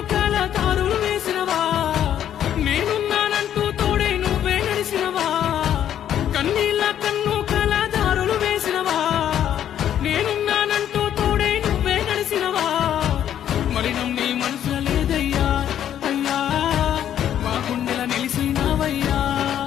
కాల తారులు వేసినవా నేనున్నానంటూ తోడే నువ్వే నడిసినవా కన్నీళ్ళ కన్ను కాల దారులు వేసినవా నేనున్నానంటూ తోడే నువ్వే నడిసినవా మలినం నీ మనసుల లేదయ్యా అయ్యా మా గుండెల నిలిసినవయ్యా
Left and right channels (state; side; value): quieter; right; 10.4 dB